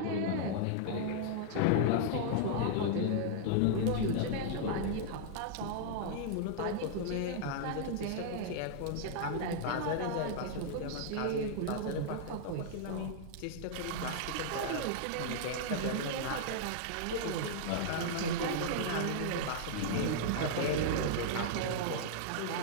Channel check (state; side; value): different; both; correlation -0.01